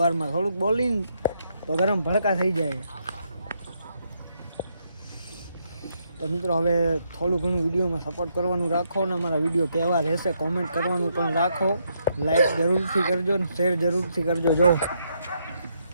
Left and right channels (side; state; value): both; inverted; correlation -0.77